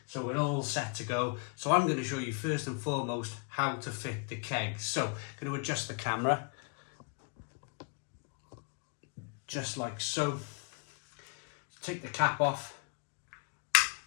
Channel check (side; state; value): right; quieter; 35.8 dB